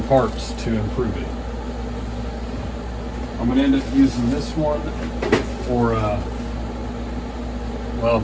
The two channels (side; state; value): both; identical; correlation 1.00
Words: parts to improve it. I'm going to end up using this one for well,